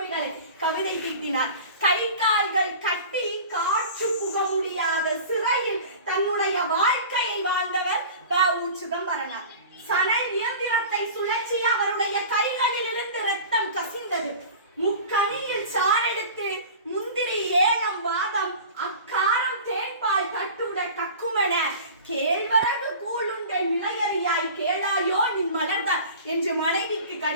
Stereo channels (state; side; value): inverted; both; correlation -0.38